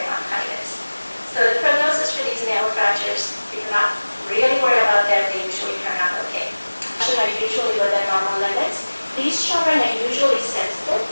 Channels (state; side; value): inverted; both; correlation -1.00